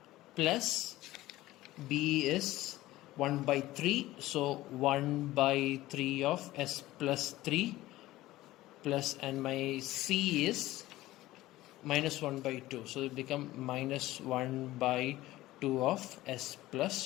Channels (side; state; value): right; quieter; 16.8 dB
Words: plus b is 1 by 3, so 1 by 3 of s plus 3 plus, and my c is minus 1 by 2, so it become minus 1 by 2 of s